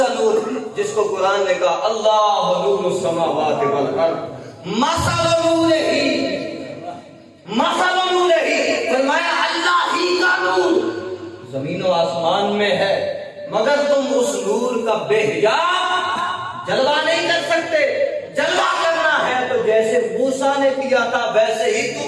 نور؟ جس کو قرآن نے کہا اللہ نور السماوات والارض مثل نورہ، مثل نورہ، فرمایا اللہ ہی کا نور زمین و آسمان میں ہے، مگر تم اس نور کا بے حجاب جلوہ نہیں کر سکتے۔ جلوہ کرنا ہے تو جیسے موسیٰ نے کیا تھا ویسے ہی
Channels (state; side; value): identical; both; correlation 1.00